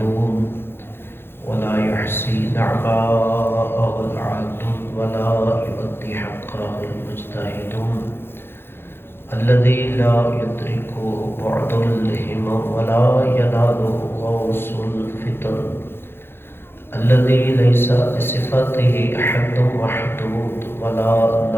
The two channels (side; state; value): right; late; 0.11 ms